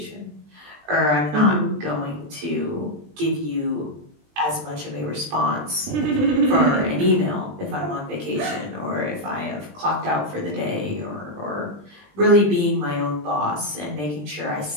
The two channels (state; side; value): late; left; 20 ms